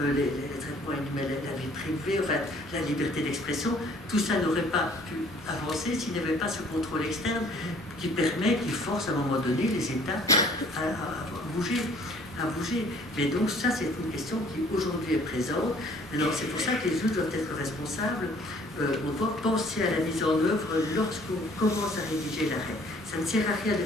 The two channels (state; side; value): normal; both; correlation 0.56